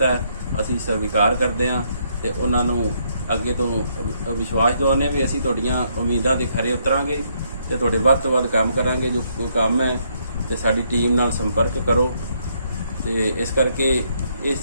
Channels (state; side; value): inverted; both; correlation -0.72